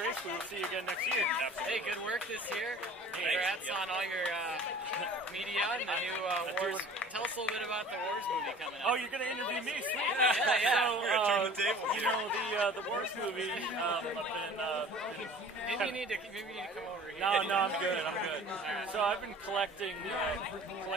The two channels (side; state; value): both; normal; correlation 0.45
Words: we will see you again next year. Hey, good work this year. Congrats on all your media and the new WORS. Tell us a little bit about the WORS movie coming up. Oh, you're going to interview me? Sweet. Yeah. We're going to turn the table. The WORS movie, Maybe you need to come over here. No, I'm good. So I've been collecting